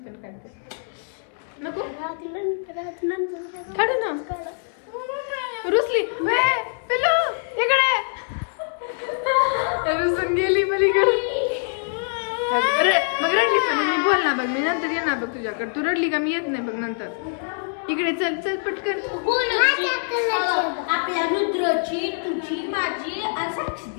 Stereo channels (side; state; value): right; silent; digital silence